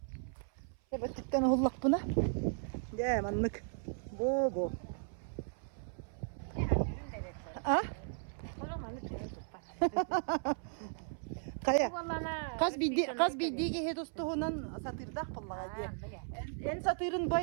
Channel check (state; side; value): silent; left; 54 dB below the other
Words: Evet dikten hullak buna. De manlık. Bu. Ha? Olamanlık tutpa. Kaya. Vallana. Kaz bildiği ki hedostuğundan satırdak pullağa diye. En satırın